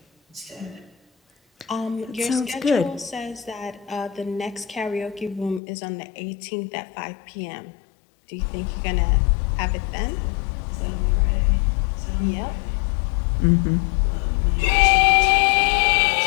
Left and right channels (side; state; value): right; drops out; at 5.6 s